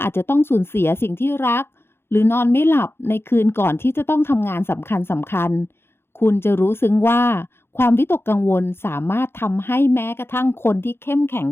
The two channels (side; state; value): right; late; 0.11 ms